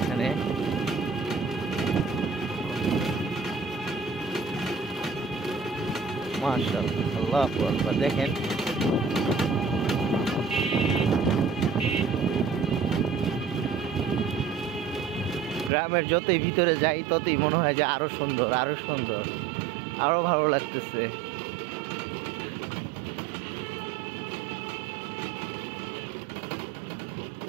মাশাআল্লাহ, আল্লাহু আকবার। দেখেন গ্রামের যতই ভিতরে যাই ততই মনে হয় যে আরো সুন্দর, আরো সুন্দর, আরো ভালো লাগতেছে।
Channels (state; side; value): drops out; left; at 15.7 s